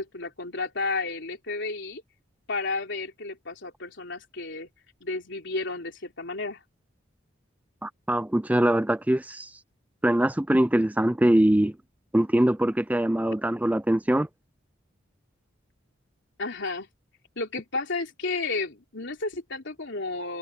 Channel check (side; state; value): both; normal; correlation 0.76